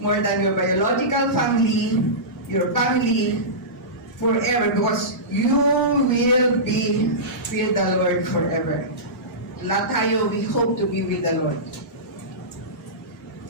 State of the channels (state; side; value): normal; both; correlation -0.19